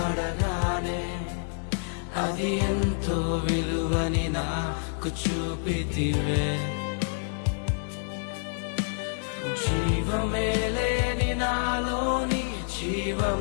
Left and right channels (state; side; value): silent; right; digital silence